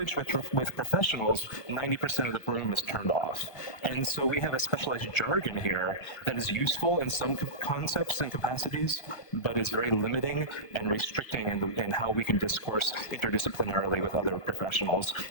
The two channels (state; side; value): late; right; 1.4 ms